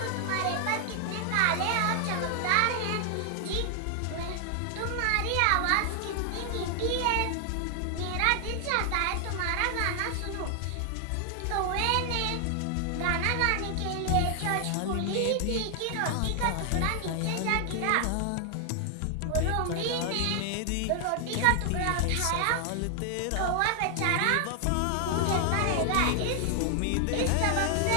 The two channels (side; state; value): both; different; correlation 0.00